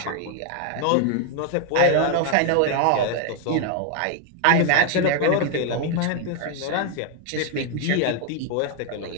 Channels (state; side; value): different; both; correlation 0.00